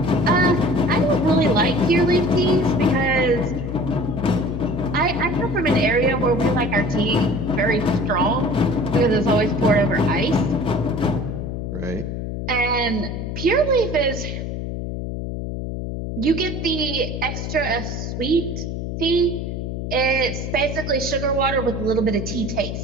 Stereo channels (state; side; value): noise; left; hum, 5 dB below the sound